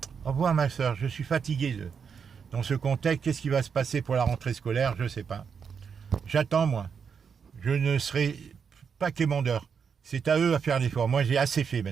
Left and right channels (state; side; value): quieter; left; 6.5 dB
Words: Au revoir, ma sœur. Je suis fatigué dans ce contexte. Qu'est-ce qui va se passer pour la rentrée scolaire? Je ne sais pas. J'attends, moi. Je ne serai pas quémandeur. C'est à eux à faire l'effort. Moi, j'ai assez fait